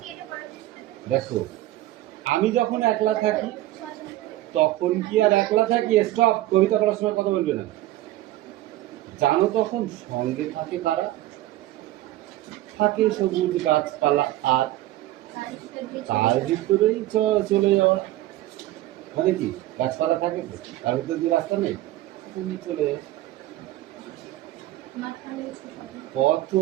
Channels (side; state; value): left; quieter; 15.7 dB